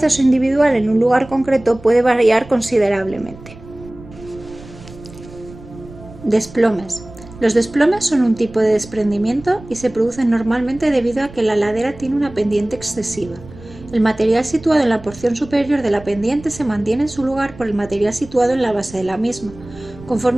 individual en un lugar concreto puede variar considerablemente. Desplomes. Los desplomes son un tipo de desprendimiento y se producen normalmente debido a que la ladera tiene una pendiente excesiva. El material situado en la porción superior de la pendiente se mantiene en su lugar por el material situado en la base de la misma.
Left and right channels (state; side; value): noise; right; rumble, 18 dB below the sound